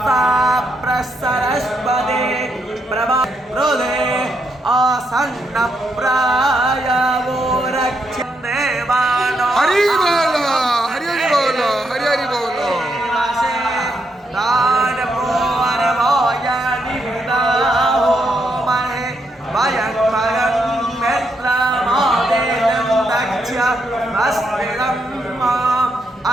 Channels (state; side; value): normal; both; correlation 0.79